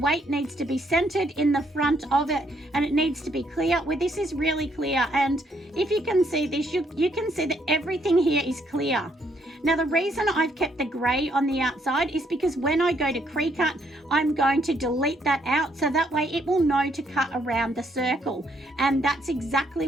needs to be centered in the front of it, and it needs to be clear. Well, this is really clear, and if you can see this, you can see that everything here is clear. Now, the reason I've kept the grey on the outside is because when I go to Cricut, I'm going to delete that out, so that way it will know to cut around the circle. And that's exactly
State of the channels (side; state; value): both; normal; correlation 0.71